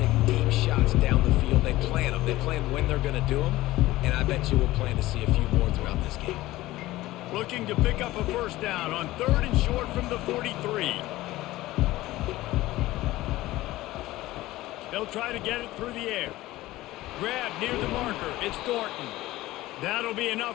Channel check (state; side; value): quieter; right; 17.3 dB